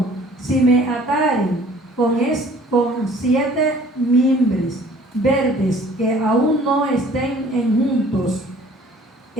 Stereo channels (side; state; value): both; normal; correlation 0.53